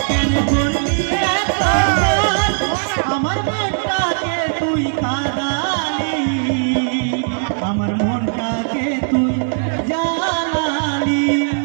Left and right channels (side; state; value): left; silent; digital silence